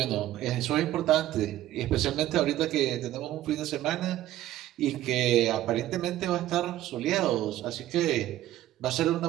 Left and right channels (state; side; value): quieter; left; 14.0 dB